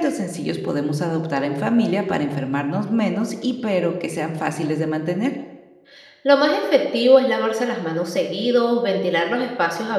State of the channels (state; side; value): identical; both; correlation 1.00